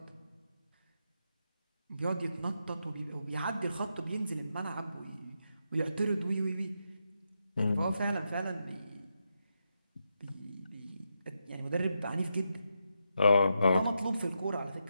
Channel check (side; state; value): both; inverted; correlation -0.85